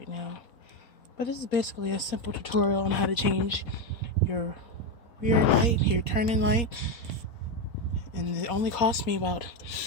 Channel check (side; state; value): right; late; 4.2 ms